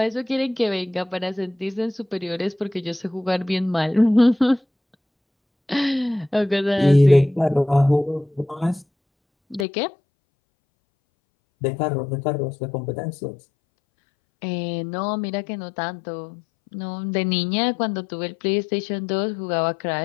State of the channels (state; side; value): drops out; right; at 9.7 s